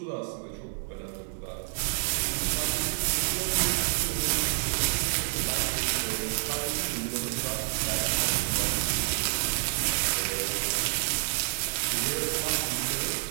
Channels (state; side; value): silent; left; digital silence